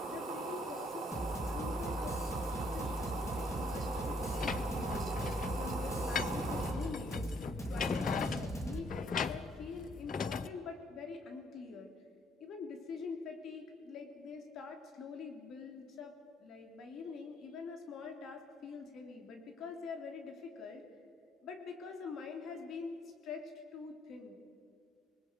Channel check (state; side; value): normal; both; correlation 0.67